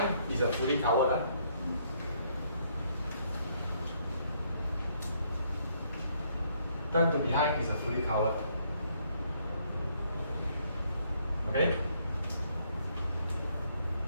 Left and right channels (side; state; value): both; inverted; correlation -0.69